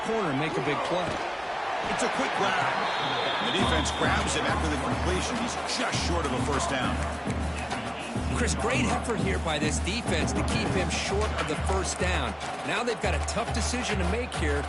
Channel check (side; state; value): both; identical; correlation 1.00